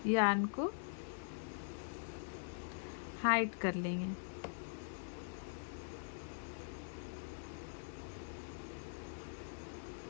यार्न को हाइड कर लेंगे।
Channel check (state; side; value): silent; right; digital silence